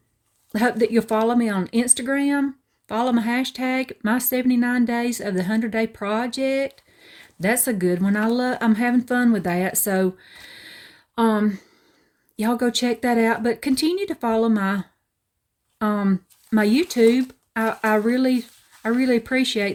hope that you'll follow me on Instagram. Follow my hashtag, my 79 days of the 100-day project. That's a good one. I'm having fun with that. So, y'all go check that out. But continue to follow my YouTube. I really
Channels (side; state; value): both; identical; correlation 1.00